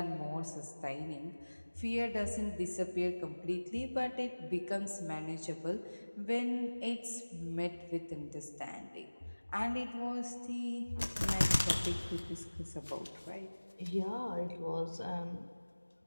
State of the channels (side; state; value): both; inverted; correlation -1.00